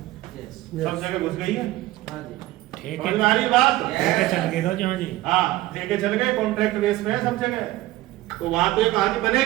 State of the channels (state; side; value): quieter; left; 17.1 dB